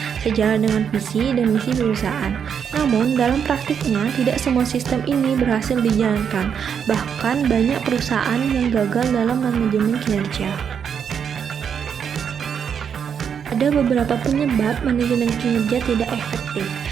sejalan dengan visi dan misi perusahaan. Namun, dalam praktiknya, tidak semua sistem ini berhasil dijalankan. Bahkan, banyak perusahaan yang gagal dalam manajemen kinerja. Ada beberapa penyebab manajemen kinerja tidak efektif.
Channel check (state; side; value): quieter; left; 7.5 dB